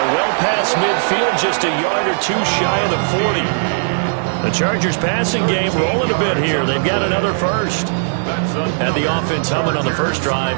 well past midfield, just a yard or two shy of the 40. The Chargers passing game rolling a bit here. They've got another first. Had the offense humming on the first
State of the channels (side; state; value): left; silent; digital silence